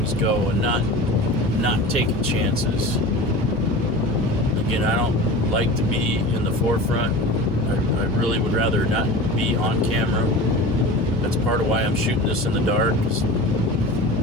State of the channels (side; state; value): both; normal; correlation 0.34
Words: go and not taking chances. Again, I don't like to be in the forefront. I really would rather not be on camera. That's part of why I'm shooting this in the dark.